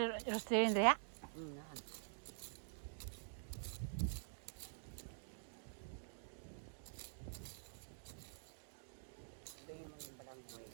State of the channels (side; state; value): left; silent; digital silence